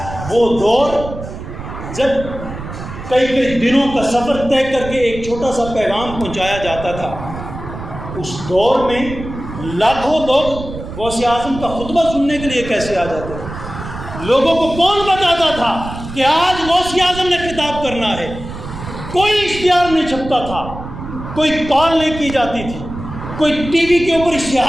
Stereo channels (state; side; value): noise; right; rumble, 10 dB below the sound